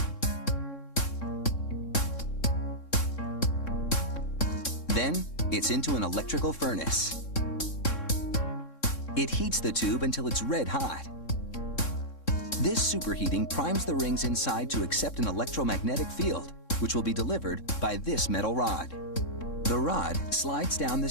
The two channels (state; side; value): late; right; 3.6 ms